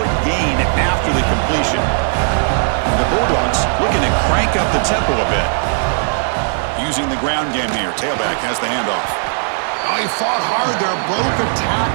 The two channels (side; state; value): left; silent; digital silence